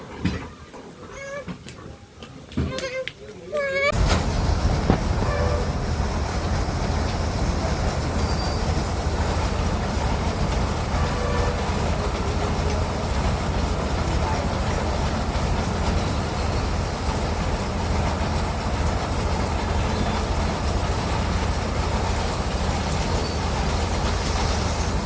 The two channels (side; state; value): both; identical; correlation 1.00